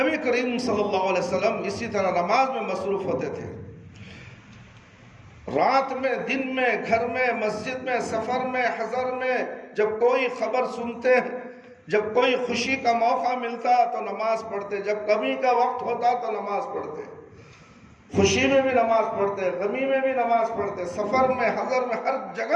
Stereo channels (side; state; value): both; identical; correlation 1.00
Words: کریم صلی اللہ علیہ وسلم اسی طرح نماز میں مصروف ہوتے تھے۔ رات میں، دن میں، گھر میں، مسجد میں، سفر میں، حضر میں، جب کوئی خبر سنتے، جب کوئی خوشی کا موقع ملتا تو نماز پڑھتے، جب غمی کا وقت ہوتا تو نماز پڑھتے، خوشی میں بھی نماز پڑھتے، غمی میں بھی نماز پڑھتے، سفر میں، حضر میں، ہر